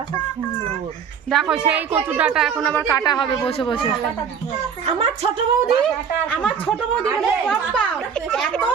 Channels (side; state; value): left; quieter; 7.1 dB